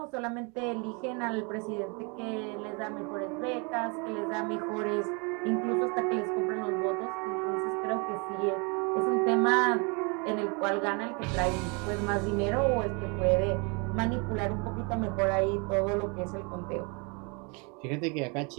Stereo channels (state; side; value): quieter; left; 32.4 dB